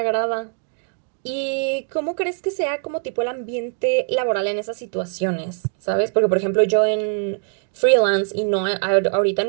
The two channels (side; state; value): left; silent; 64 dB below the other